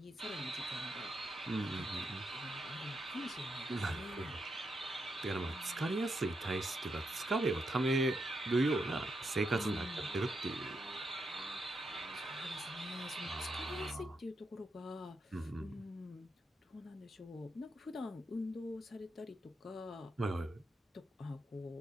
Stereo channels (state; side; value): normal; both; correlation 0.83